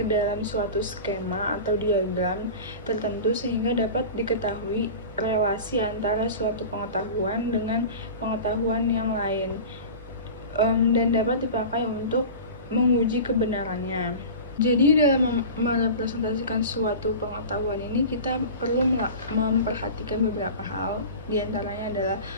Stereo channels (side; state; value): both; inverted; correlation -0.34